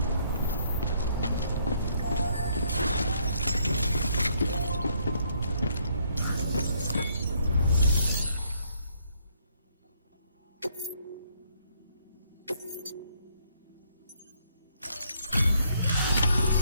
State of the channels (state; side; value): inverted; both; correlation -0.69